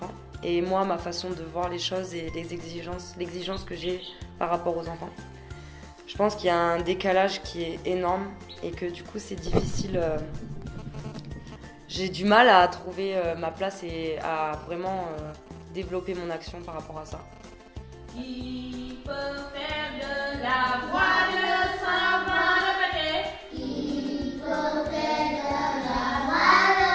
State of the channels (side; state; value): both; identical; correlation 1.00